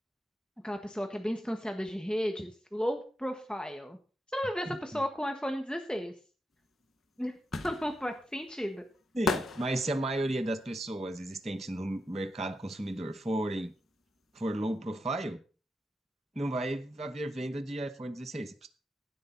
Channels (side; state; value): both; normal; correlation 0.86